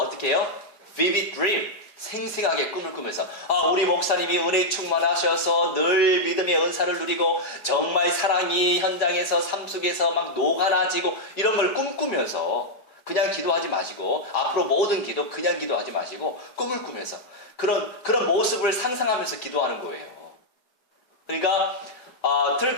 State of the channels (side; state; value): right; late; 4.8 ms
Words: 해요? Vivid dream. 생생하게 꿈을 꾸면서 우리 목사님이 은혜 충만하셔서 늘 믿음의 은사를 누리고 정말 사랑이 현장에서 삶 속에서 막 녹아나지고 이런 걸 꿈꾸면서 그냥 기도하지 마시고 앞으로 모든 기도 그냥 기도하지 마시고 꿈을 꾸면서 그런 모습을 상상하면서 기도하는 거예요. 그러니까